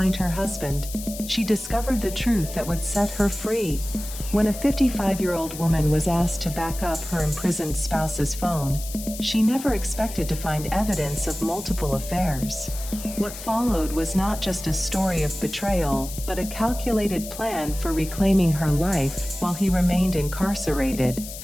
her husband, she discovered the truth that would set her free. When a 55-year-old woman was asked to back up her imprisoned spouse's phone, she never expected to find evidence of multiple affairs. What followed was not just a story of betrayal, but a calculated plan for reclaiming her life while he remained incarcerated.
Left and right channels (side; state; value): left; noise; hiss, 11 dB below the sound